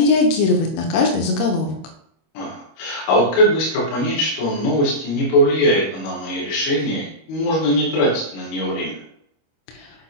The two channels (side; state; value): right; late; 25 ms